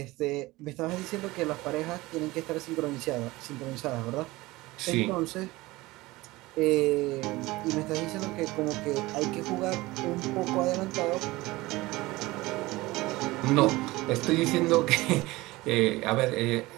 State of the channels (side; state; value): left; quieter; 20.1 dB